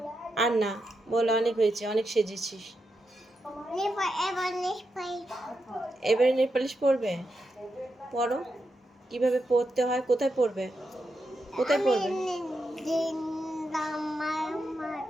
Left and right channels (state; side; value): normal; both; correlation 0.86